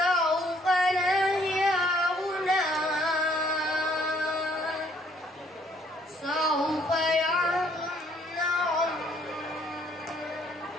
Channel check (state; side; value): normal; both; correlation 0.65